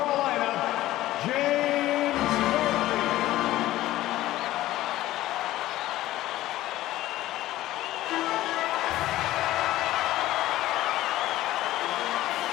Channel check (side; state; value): right; quieter; 15.4 dB